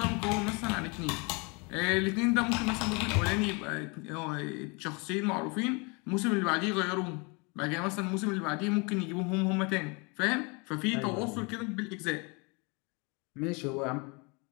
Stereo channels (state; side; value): quieter; right; 30.4 dB